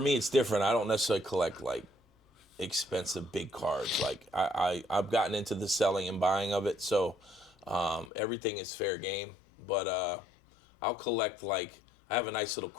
it's different. I don't necessarily collect like expensive big cards. Like I've gotten into the selling and buying of it, so everything is fair game. But I'll collect, like, I have a nice little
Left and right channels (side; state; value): right; drops out; at 8.1 s